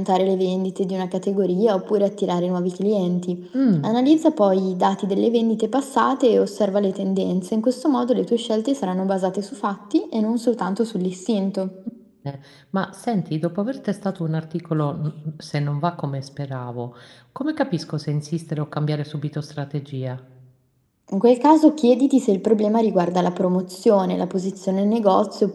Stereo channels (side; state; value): both; identical; correlation 1.00